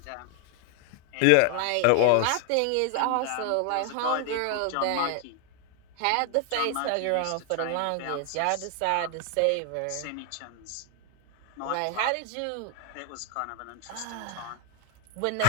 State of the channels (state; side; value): different; both; correlation 0.00